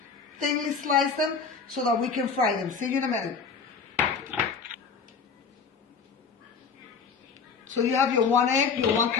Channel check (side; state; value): right; quieter; 5.5 dB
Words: Thinly slice them so that we can fry them. See you in a minute. So you have your 1 egg, your 1